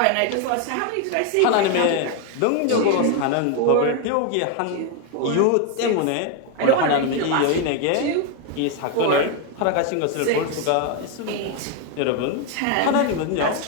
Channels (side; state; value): both; different; correlation 0.01